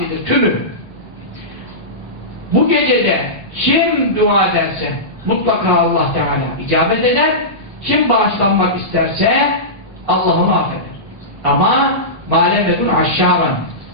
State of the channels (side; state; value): both; normal; correlation -0.17